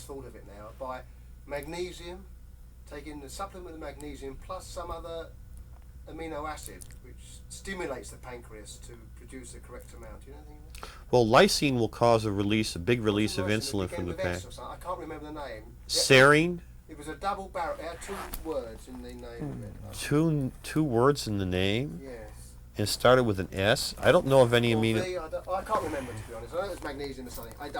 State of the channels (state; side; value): identical; both; correlation 1.00